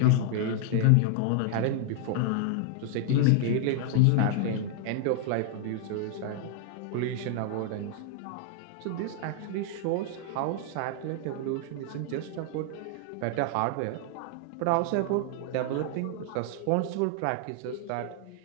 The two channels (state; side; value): different; both; correlation 0.00